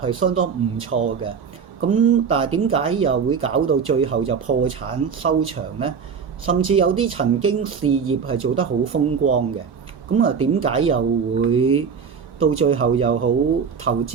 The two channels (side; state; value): left; quieter; 6.3 dB